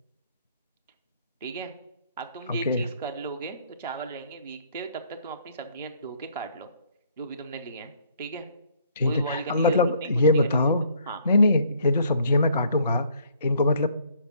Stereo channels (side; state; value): both; inverted; correlation -0.62